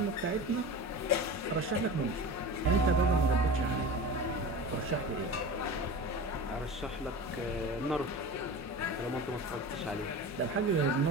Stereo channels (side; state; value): both; normal; correlation 0.32